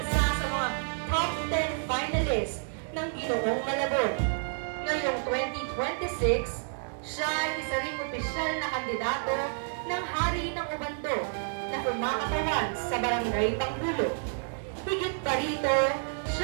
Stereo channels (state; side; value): silent; left; digital silence